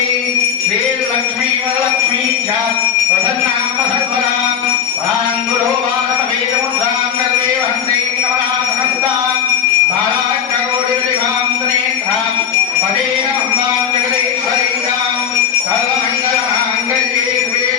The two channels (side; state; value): right; quieter; 8.4 dB